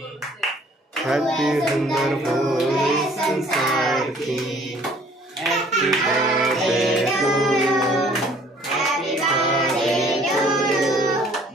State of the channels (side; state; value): both; normal; correlation 0.56